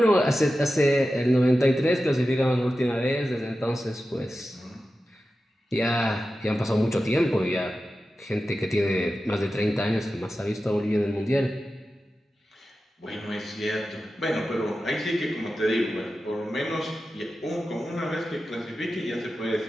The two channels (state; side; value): normal; both; correlation 0.93